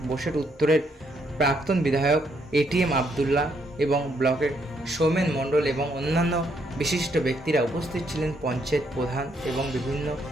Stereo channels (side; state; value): both; normal; correlation 0.73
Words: বোসেট উত্তরের প্রাক্তন বিধায়ক এটিএম আবদুল্লাহ এবং ব্লকের সৌমেন মণ্ডল এবং অন্যান্য বিশিষ্ট ব্যক্তিরা উপস্থিত ছিলেন, পঞ্চায়েত প্রধান এবং বিভিন্ন